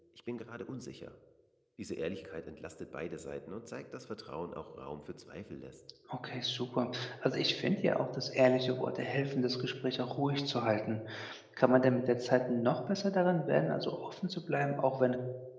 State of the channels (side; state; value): both; identical; correlation 1.00